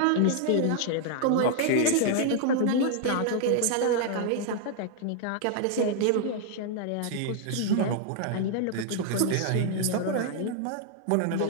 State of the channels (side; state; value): both; different; correlation 0.00